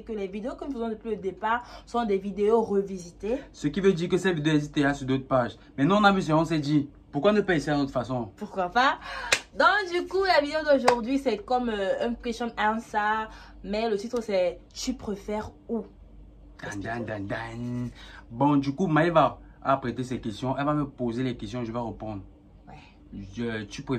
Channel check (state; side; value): identical; both; correlation 1.00